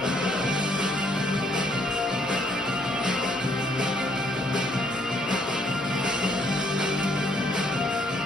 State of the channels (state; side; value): normal; both; correlation 0.68